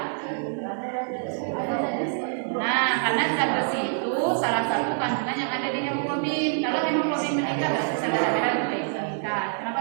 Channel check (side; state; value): left; silent; digital silence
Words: Nah, karena zat besi itu salah satu kandungan yang ada di hemoglobin. Kalau hemoglobin meningkat, berarti sel darah merah itu meningkat.